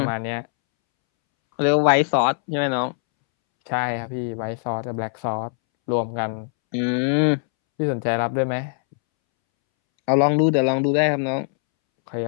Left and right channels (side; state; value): right; silent; 64 dB below the other